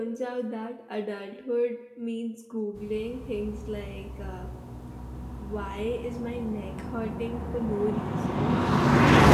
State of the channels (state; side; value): identical; both; correlation 1.00